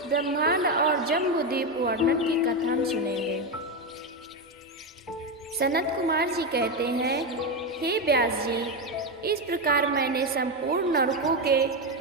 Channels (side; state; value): both; normal; correlation 0.10